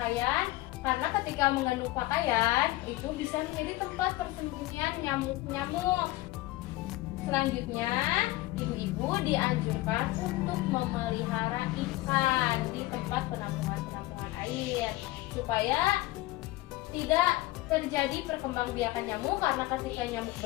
karena ketika menggantung pakaian itu bisa menjadi tempat persembunyian nyamuk-nyamuk. Selanjutnya, ibu-ibu dianjurkan untuk memelihara ikan di tempat penampungan air supaya tidak terjadi perkembangbiakan nyamuk, karena ketika nyamuk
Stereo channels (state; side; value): quieter; right; 18.5 dB